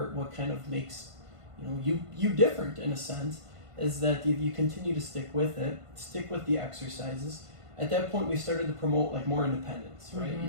kind of makes you different in a sense, is that if you continue to stick with it, stick with the exercises. At that point, we started to promote more independence, right? You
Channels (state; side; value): late; left; 1.5 ms